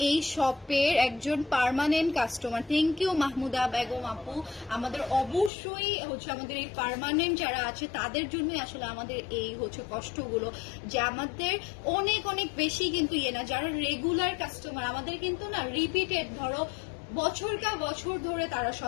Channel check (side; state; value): right; drops out; at 5.5 s